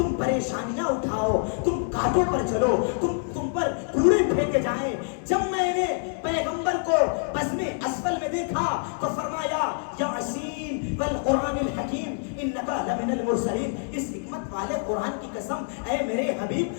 پریشانیاں اٹھاؤ، تم کانٹوں پر چلو، تم پر کوڑے پھینکے جائیں۔ جب میں نے پیغمبر کو بزم اسفل میں دیکھا تو فرمایا یاسین والقرآن الحکیم انک لمن المرسلین، اس حکمت والے قرآن کی قسم اے میرے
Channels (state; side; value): silent; right; 61 dB below the other